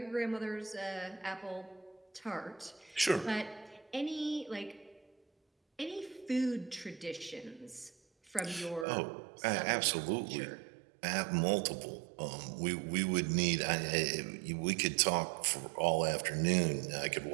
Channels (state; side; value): drops out; left; at 8.8 s